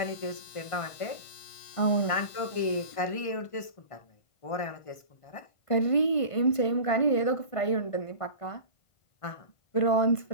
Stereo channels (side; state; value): right; late; 1.5 ms